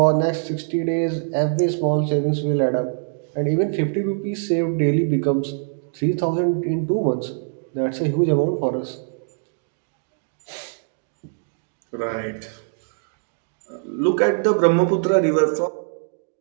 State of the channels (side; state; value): left; silent; digital silence